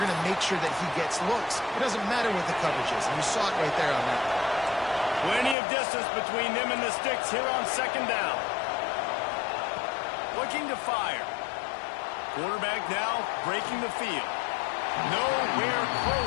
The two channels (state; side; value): drops out; right; at 5.6 s